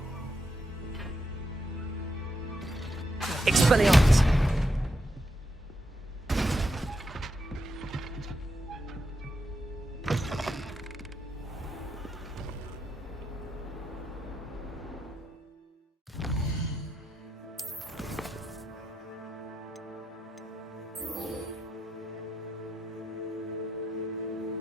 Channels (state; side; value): normal; both; correlation 0.83